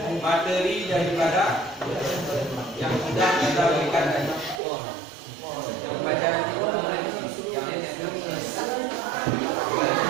materi daripada yang sudah kita berikan tadi. Pelajaran itu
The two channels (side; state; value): left; drops out; at 4.6 s